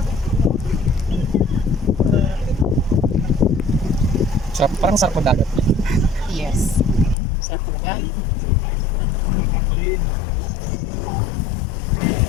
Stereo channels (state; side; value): drops out; right; at 7.2 s